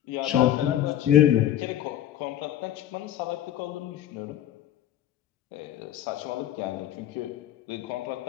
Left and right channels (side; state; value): right; quieter; 11.6 dB